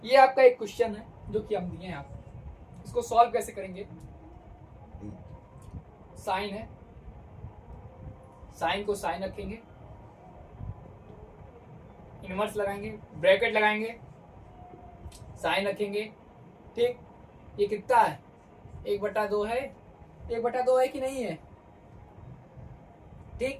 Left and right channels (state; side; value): identical; both; correlation 1.00